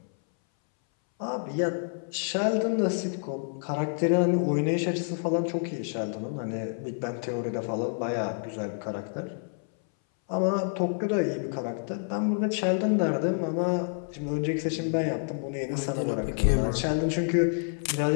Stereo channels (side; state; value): right; silent; 59 dB below the other